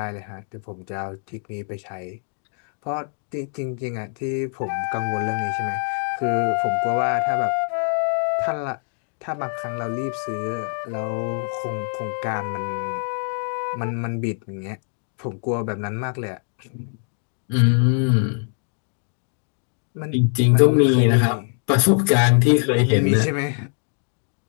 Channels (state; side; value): silent; right; 55 dB below the other